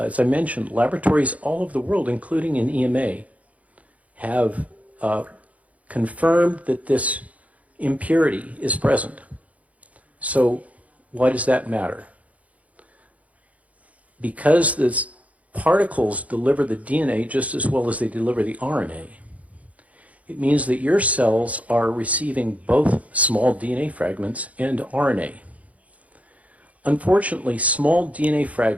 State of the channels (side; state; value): left; late; 0.068 ms